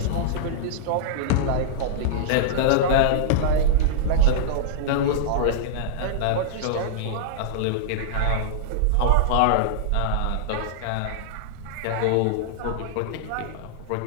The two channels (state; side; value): different; both; correlation -0.02